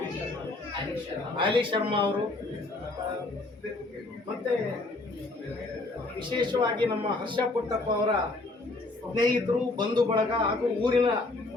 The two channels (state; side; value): quieter; right; 3.1 dB